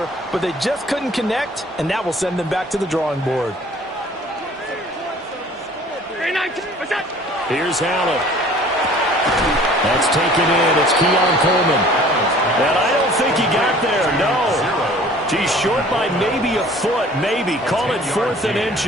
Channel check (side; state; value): both; normal; correlation 0.50